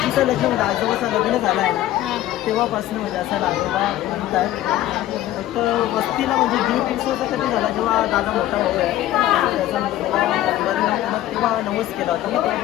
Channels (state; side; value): quieter; right; 13.9 dB